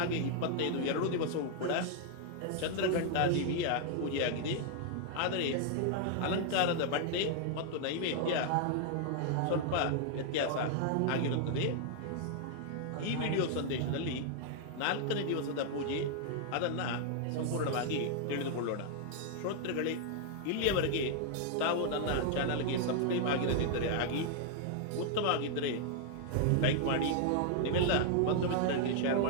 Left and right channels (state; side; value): different; both; correlation -0.01